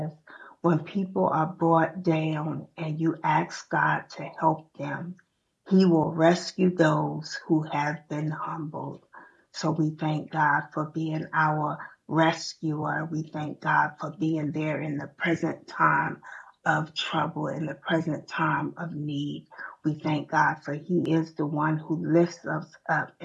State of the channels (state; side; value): identical; both; correlation 1.00